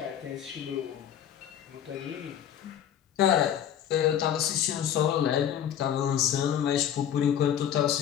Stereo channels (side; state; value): right; quieter; 9.8 dB